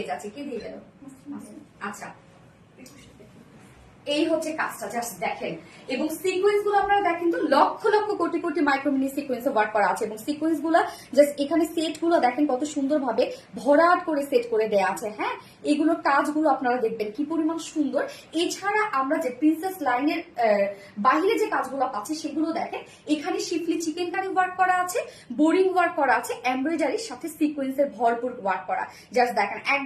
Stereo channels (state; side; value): identical; both; correlation 1.00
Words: যাচ্ছি। কি দিয়ে গেল? আচ্ছা এই হচ্ছে কাজটা, জাস্ট দেখেন। এবং সিকোয়েন্স গুলো আপনারা দেখেন তো lakh lakh crore crore micromini sequence work করা আছে, এবং সিকোয়েন্স গুলো জাস্ট এখানে সেট গুলো দেখেন কত সুন্দরভাবে ভরাট করে সেট করে দেয়া আছে, হ্যাঁ। এগুলোর কাজগুলো আপনারা দেখবেন কি পরিমাণ সুন্দর। এছাড়া আমরা যে প্রিন্সেস লাইনের বাহিরে যে কাজগুলো পাচ্ছি সেগুলো দেখেন, এখানে শিফলি চিকেন কারি ওয়ার্ক করা আছে, বোরিং ওয়ার্ক করা আছে, এমব্রয়ডারির সাথে সিকোয়েন্সের ভরপুর ওয়ার্ক করা। জাস্ট দেখেন